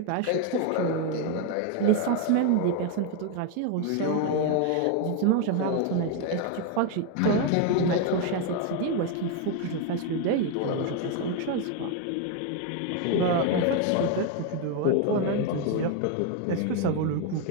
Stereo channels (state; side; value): different; both; correlation 0.01